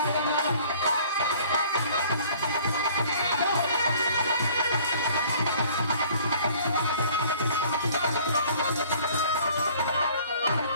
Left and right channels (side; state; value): both; inverted; correlation -0.54